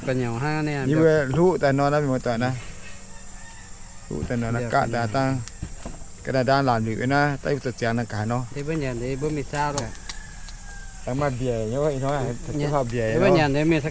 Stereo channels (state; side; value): identical; both; correlation 1.00